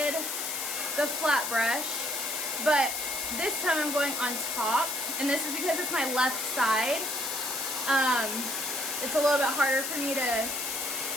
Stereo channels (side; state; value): left; noise; hiss, 3 dB below the sound